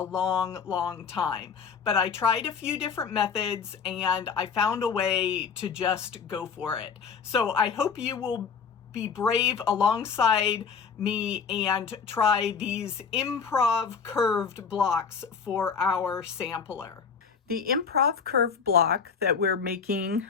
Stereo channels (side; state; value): right; quieter; 6.1 dB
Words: time, but I tried a few different methods and I found a way to just go for it. So I hope you will be brave alongside me and try these Improv curved blocks for our sampler. The Improv curved block that we're making